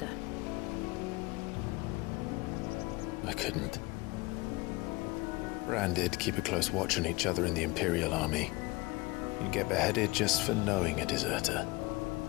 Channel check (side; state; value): right; quieter; 23.2 dB